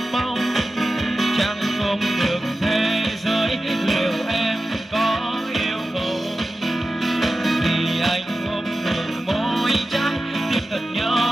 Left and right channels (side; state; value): both; normal; correlation 0.93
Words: mong chẳng không được thế giới liệu em có yêu không thì anh thật